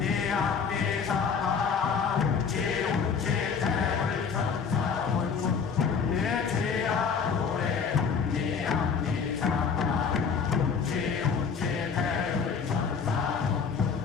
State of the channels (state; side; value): quieter; right; 6.0 dB